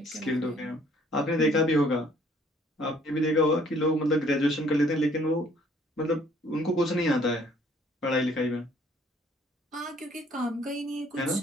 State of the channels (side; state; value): both; normal; correlation 0.60